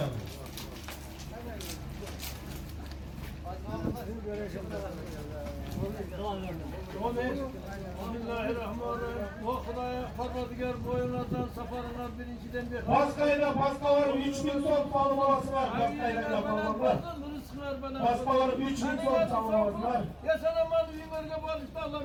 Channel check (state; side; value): identical; both; correlation 1.00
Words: Bismillahirrahmanirrahim. O Xudaya Parvardigar boyunlardan safarından birinciden bir. Paska var, 3000 son palmaması var. Paskayla palmalar. Paska var, 3000 son palmaması var. Ya sana mal verge bağışta Allah